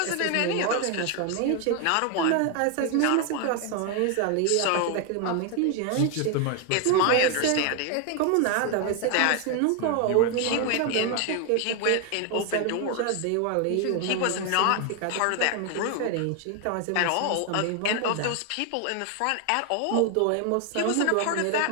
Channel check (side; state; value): both; different; correlation 0.01